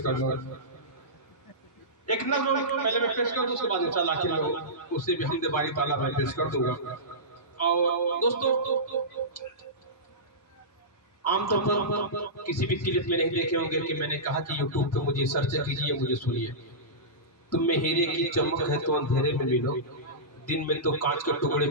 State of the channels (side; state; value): both; normal; correlation -0.18